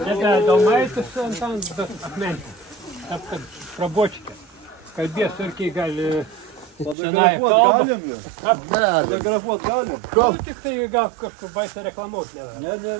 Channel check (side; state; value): left; drops out; at 7.0 s